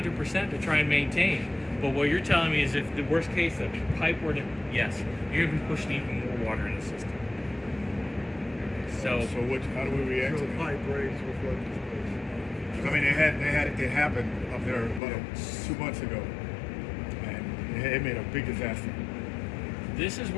to try and maintain. But what you're telling me is if the worst case, the pipe were to, yes, you're going to be pushing even more water in the system. So How do we react to that? pipe breaks with what? I mean, it happened up there about 2 months ago, and it made a big disaster. this is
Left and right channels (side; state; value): right; drops out; at 15.0 s